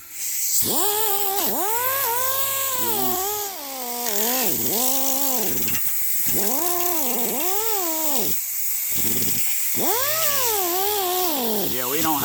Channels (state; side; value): identical; both; correlation 1.00